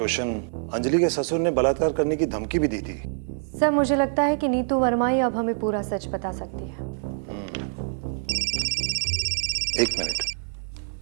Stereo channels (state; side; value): silent; left; 60 dB below the other